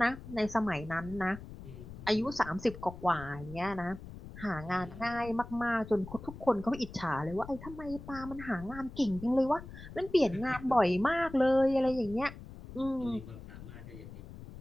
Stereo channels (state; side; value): noise; left; rumble, 14 dB below the sound